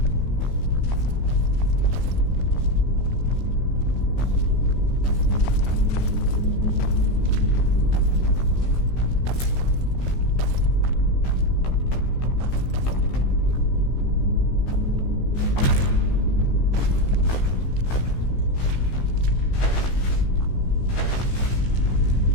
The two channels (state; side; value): late; right; 16 ms